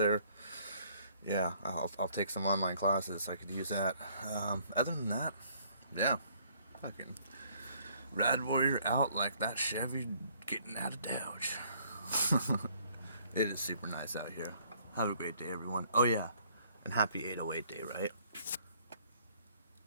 yeah, I'll take some online classes. I could use that. Other than that, yeah, fucking Rad Warrior out like that Chevy getting out of Dodge. It is super nice out here. Have a great day, everyone. Oh yeah, and happy 808 day, right?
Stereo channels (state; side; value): inverted; both; correlation -0.62